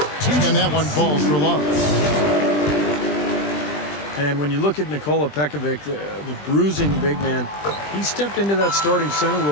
And that one falls for Love. And when you look at Nikola Pekovic, the bruising big man, he stepped into that starting center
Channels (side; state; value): right; late; 20 ms